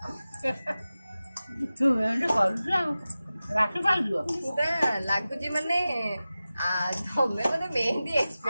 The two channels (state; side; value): inverted; both; correlation -0.95